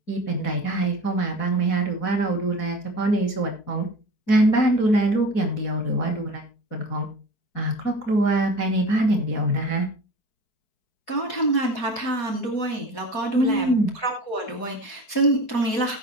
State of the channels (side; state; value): right; late; 4.2 ms